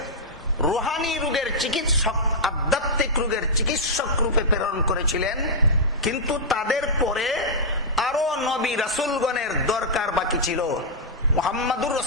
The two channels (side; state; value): both; normal; correlation -0.08